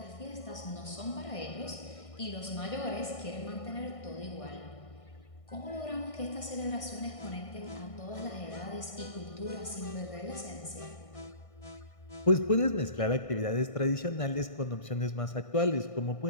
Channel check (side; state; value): right; late; 1.6 ms